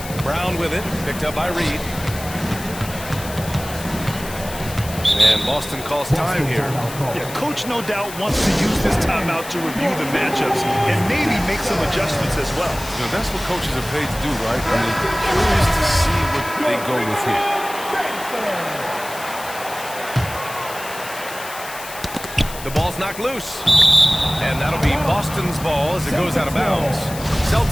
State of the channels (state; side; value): noise; left; hiss, 13 dB below the sound